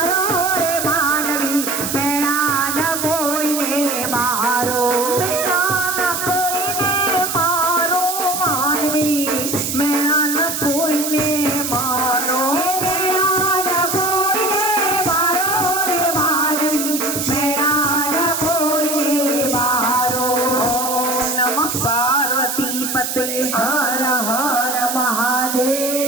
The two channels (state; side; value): noise; right; hiss, 3 dB below the sound